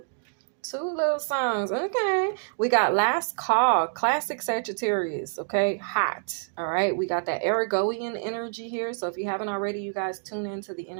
little songs. Okay, we got Last Call, classic Sagittarius. Okay, hot. All right, we got that Aragoian energy here. So if you haven't already, you guys tune into the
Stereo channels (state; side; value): silent; left; digital silence